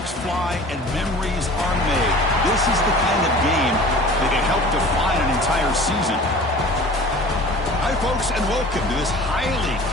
fly and memories are made. This is the kind of game that can help define an entire season. Hi, folks, and welcome to this highly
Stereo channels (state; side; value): normal; both; correlation 0.42